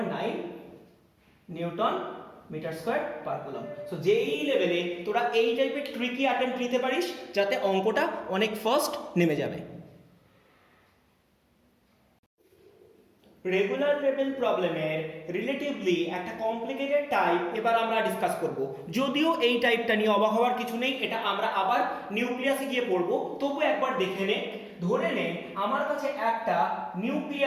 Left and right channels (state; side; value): identical; both; correlation 1.00